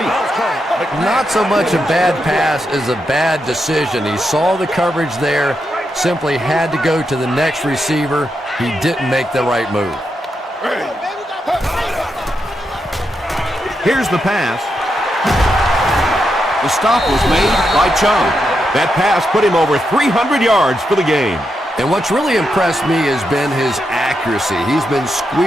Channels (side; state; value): both; normal; correlation 0.84